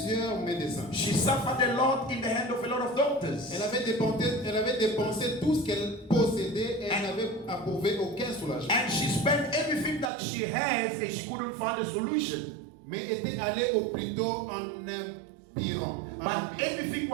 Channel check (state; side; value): drops out; left; at 10.1 s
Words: médecins. She suffered a lot in the hand of a lot of doctors. Elle avait dépensé tout ce qu'elle possédait et elle n'avait approuvé aucun soulagement. And she spent everything that she has and she couldn't find a solution. Mais était allée au plutôt en empirant. But everything